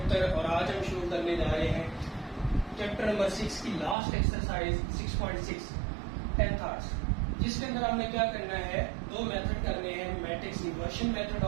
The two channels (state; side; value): drops out; left; at 4.0 s